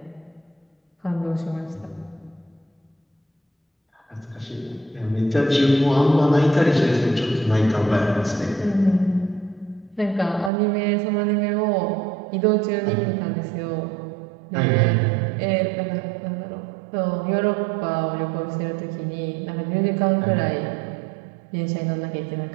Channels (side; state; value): left; drops out; at 10.5 s